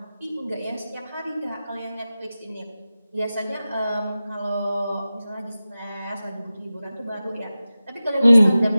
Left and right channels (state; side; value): inverted; both; correlation -0.95